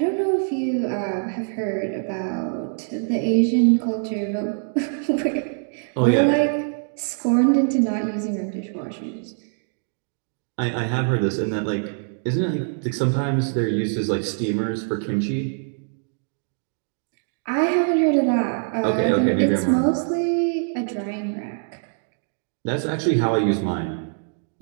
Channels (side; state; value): left; silent; digital silence